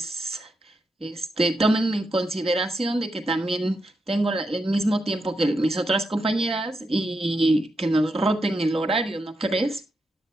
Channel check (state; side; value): normal; both; correlation 0.84